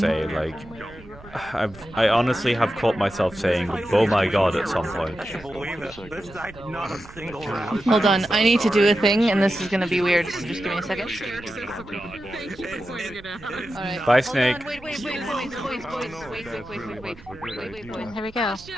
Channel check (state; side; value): noise; right; rumble, 20 dB below the sound